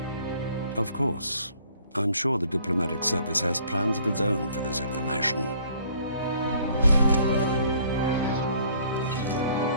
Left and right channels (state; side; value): inverted; both; correlation -0.59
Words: Of course. I'm sure the diplomatic service has plans of its own for this information.